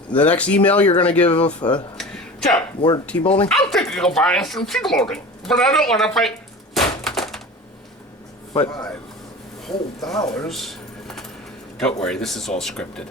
The next email you're gonna give Joe, more T molding? I'm thinking of buying some T molding, but I don't want to pay. But $5 whole dollars. Don't worry, this is all scripted.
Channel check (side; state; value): both; normal; correlation 0.35